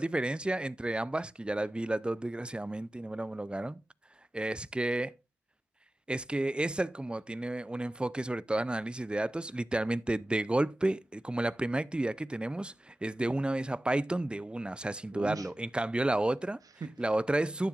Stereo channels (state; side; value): normal; both; correlation 0.95